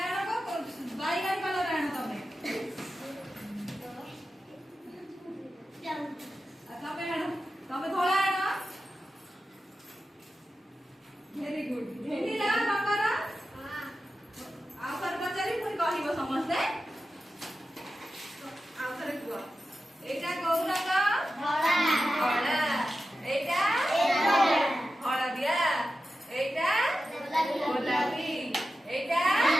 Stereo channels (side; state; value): both; normal; correlation 0.92